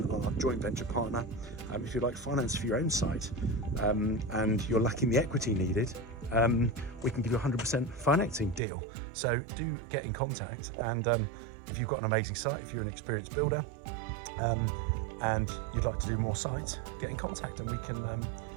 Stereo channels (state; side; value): drops out; left; at 8.6 s